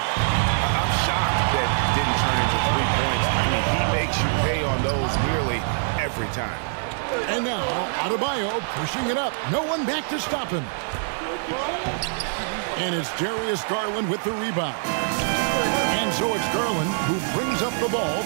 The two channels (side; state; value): left; silent; digital silence